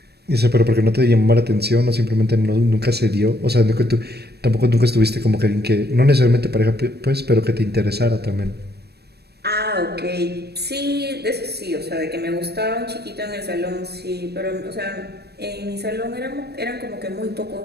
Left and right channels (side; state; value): left; late; 0.47 ms